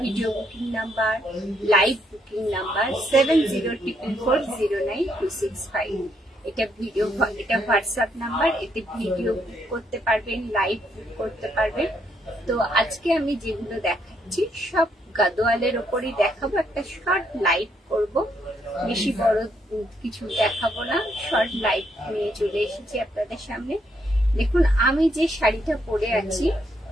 video booking number, live booking number 7044409265। এটা হোয়াটসঅ্যাপ নাম্বার। এতে ভিডিও বুক করতে পারবেন, লাইভ বুক করতে পারবেন। তো আজকে আমি যেগুলো দেখাচ্ছি সব গাদোয়ালের ওপরই দেখাবো। একটা শর্ট লাইভ করব, বেশি বড় কিছু দেখাবো না, শর্ট লাইভ নিয়ে চলে এসেছি আপনাদের সামনে। দেখুন আমি যে শাড়িটা পরে আছি,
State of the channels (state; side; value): normal; both; correlation 0.74